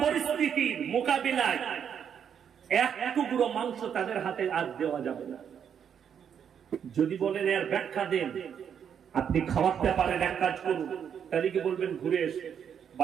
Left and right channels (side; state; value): left; quieter; 8.1 dB